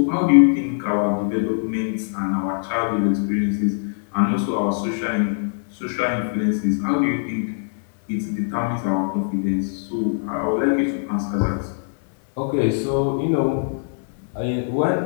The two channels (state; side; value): silent; right; digital silence